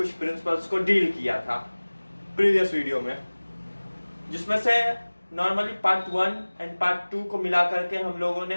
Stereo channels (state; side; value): inverted; both; correlation -1.00